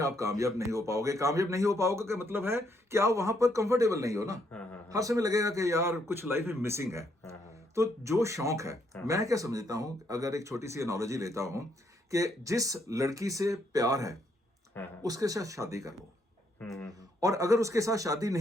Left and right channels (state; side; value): normal; both; correlation 0.73